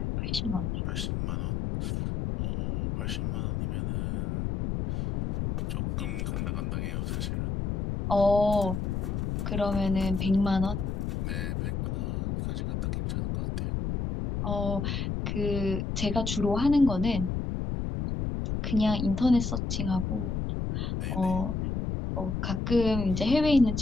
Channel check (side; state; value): left; noise; rumble, 1 dB below the sound